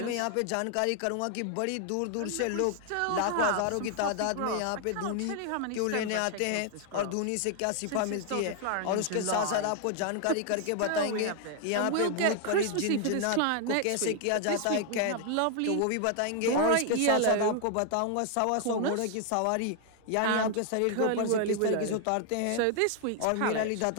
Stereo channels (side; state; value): both; different; correlation 0.00